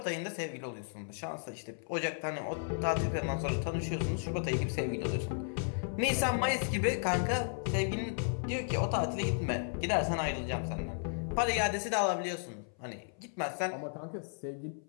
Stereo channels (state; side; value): silent; right; 55 dB below the other